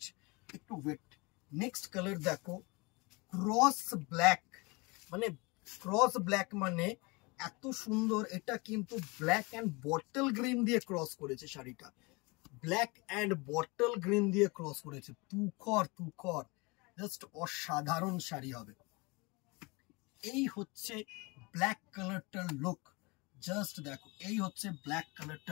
একটু ওয়েট। নেক্সট কালার দেখো, ক্রস ব্ল্যাক, মানে ক্রস ব্ল্যাক মানে এত সুন্দর। এটা কিন্তু ব্ল্যাক অ্যান্ড বটল গ্রিন দিয়ে ক্রস করেছে শাড়িটা, ব্ল্যাক অ্যান্ড বটল গ্রিন দিয়ে ক্রস করেছে। তুখর তুখর, জাস্ট অসাধারণ শাড়ি হবে। এই হচ্ছে ব্ল্যাক কালারটার লুক। জাস্ট দেখো, এই হচ্ছে ব্ল্যাক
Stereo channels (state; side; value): quieter; right; 26.8 dB